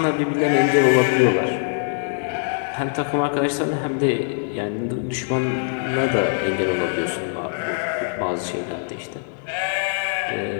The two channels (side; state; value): right; silent; 64 dB below the other